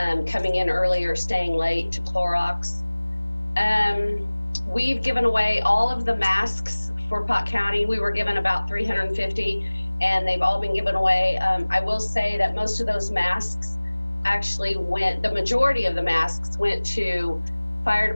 coming in early or staying late to Clorox. We've given away all of the masks for Pot County. We were given about 350, and they've all been given away. I will say that most of those masks actually the majority of the masks went to fire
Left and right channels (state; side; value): inverted; both; correlation -1.00